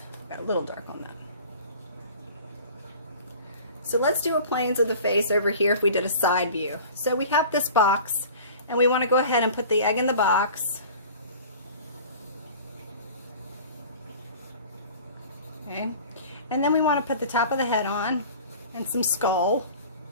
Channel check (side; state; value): both; inverted; correlation -0.43